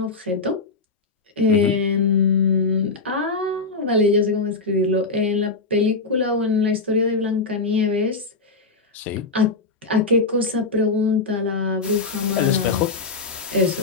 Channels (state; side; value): quieter; right; 4.0 dB